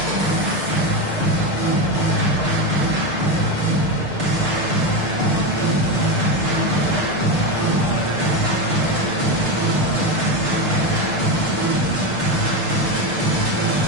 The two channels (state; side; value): late; left; 6.6 ms